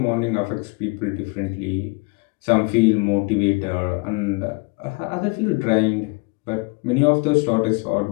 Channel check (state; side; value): quieter; right; 30.0 dB